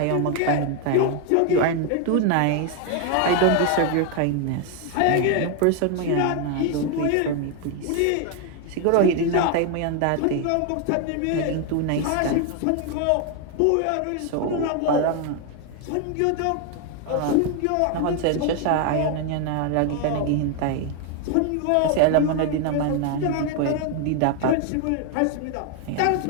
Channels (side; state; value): both; different; correlation 0.01